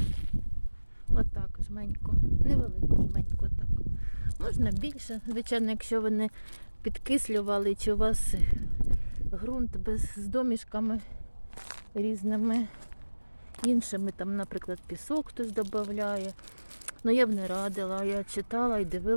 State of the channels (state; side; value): inverted; both; correlation -1.00